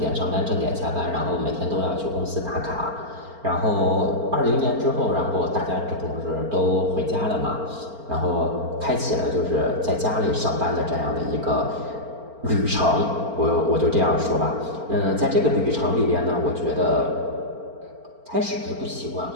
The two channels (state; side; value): late; left; 4.4 ms